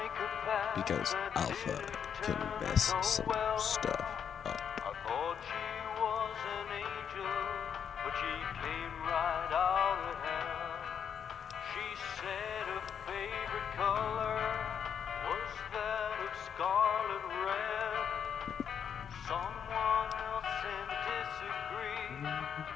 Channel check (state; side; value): quieter; right; 7.8 dB